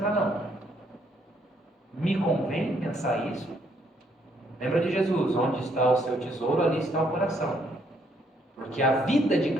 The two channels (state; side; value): normal; both; correlation 0.70